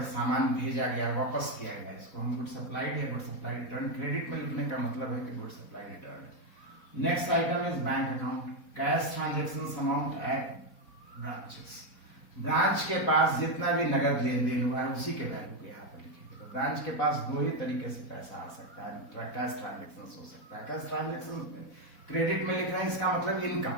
सामान भेजा गया, वापस किया गया, इसको हम गुड सप्लाइड या गुड सप्लाइड रिटर्न क्रेडिट में लिखने का मतलब है कि good supplied return. Next item is bank account, cash transaction amount at branches. Branch के पास जितना भी नगद लेन देन हुआ है उसी के वैल्यू को यहाँ पर लिखेंगे। तो ब्रांच के पास 2 ही तरीके से पैसा आ सकता है, कैश ट्रांजेक्शन हो सकता है। कैश ट्रांजेक्शन क्रेडिट में लिखना है, इसका मतलब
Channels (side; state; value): right; late; 4.0 ms